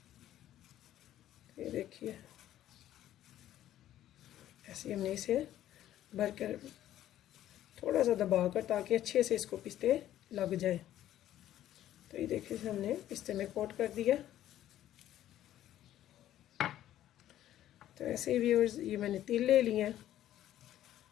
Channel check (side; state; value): right; quieter; 12.5 dB